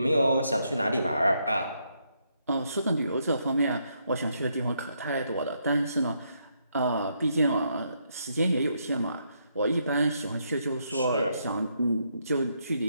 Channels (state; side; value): inverted; both; correlation -0.77